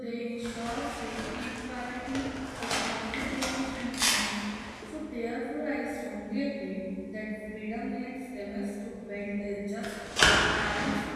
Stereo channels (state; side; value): identical; both; correlation 1.00